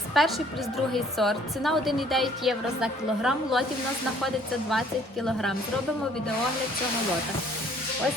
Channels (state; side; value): normal; both; correlation 0.59